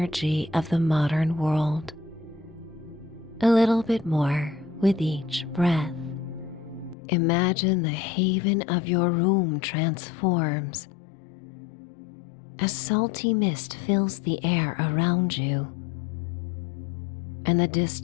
of the modern world a little bit more with each breath. Imagine the haven of your room transforms as salty mist fills the air around you, and the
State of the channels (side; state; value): right; drops out; at 7.0 s